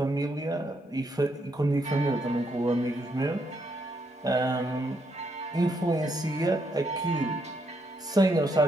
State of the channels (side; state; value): both; normal; correlation 0.76